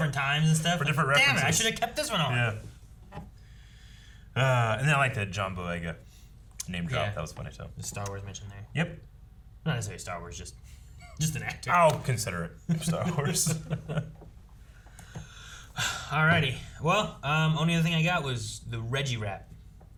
times and stuff? For different references. Damn it, I should have kept this one on. Yeah. And then I like that John Boyega name drop. Yeah. That was funny, too. The Star Wars mention there. Yep. Not necessarily Star Wars, just an actor. I'll consider it Star Wars. Alrighty. Well, only other thing I got was the Reggie rap.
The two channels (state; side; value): identical; both; correlation 1.00